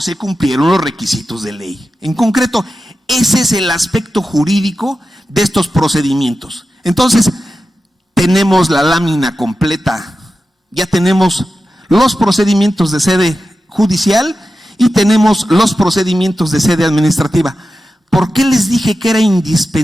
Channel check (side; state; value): both; normal; correlation 0.92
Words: cumplieron los requisitos de ley. En concreto, ese es el aspecto jurídico de estos procedimientos. Entonces, tenemos la lámina completa, ya tenemos los procedimientos de sede judicial y tenemos los procedimientos de sede administrativa. ¿Por qué les dije que era